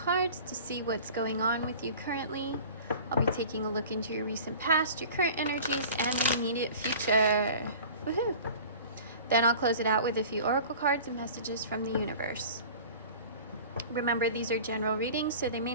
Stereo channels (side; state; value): both; inverted; correlation -0.41